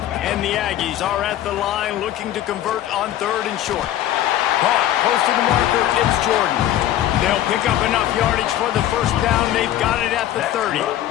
And the Aggies are at the line looking to convert on 3rd and short. Caught close to the marker, it's Jordan. They'll pick up enough yardage for the first down. They've got it at the 30.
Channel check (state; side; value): quieter; right; 12.6 dB